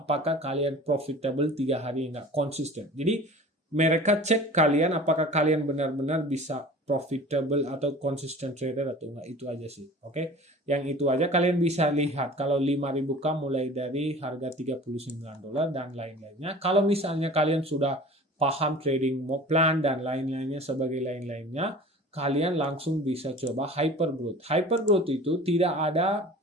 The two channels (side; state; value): both; normal; correlation 0.42